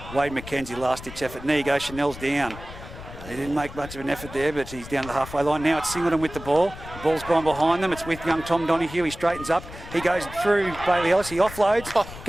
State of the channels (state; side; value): noise; left; rumble, 14 dB below the sound